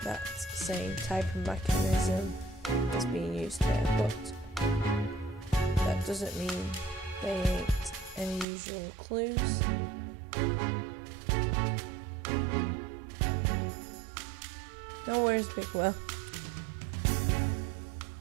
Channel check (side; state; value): left; drops out; at 8.5 s